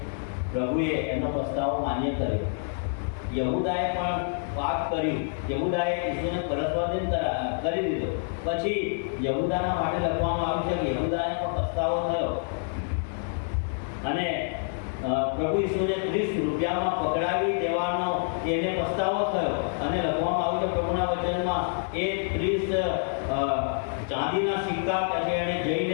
પ્રભુએ એનો પસ્તાવો માન્ય કર્યો. યહૂદાએ પણ પાપ કર્યું, યહૂદાએ ઈસુને પરસ્વાધીન કરી દીધો. પછી યહૂદાના માટે લખવામાં આવ્યું છે કે યહૂદાને પણ પસ્તાવો થયો અને પ્રભુ ઈસુને 30 રૂપિયામાં પકડાવી દેવાનો એને પસ્તાવો થયો અને લખવામાં આવ્યું છે પ્રભુના વચનમાં એ 30 ચાંદીના સિક્કા કે એને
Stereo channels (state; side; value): silent; right; digital silence